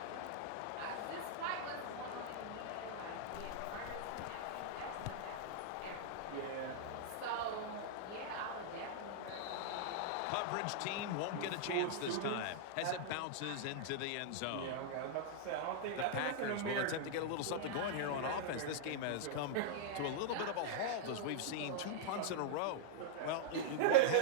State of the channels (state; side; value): different; both; correlation -0.01